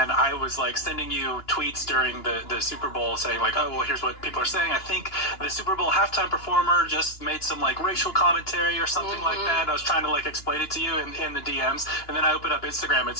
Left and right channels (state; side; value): late; right; 2.9 ms